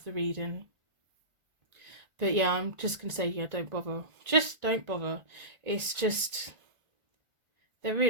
the reading. But yeah, I'm just going to say, yeah, don't bother. Just don't bother. It's just, they're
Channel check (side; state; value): left; late; 1.9 ms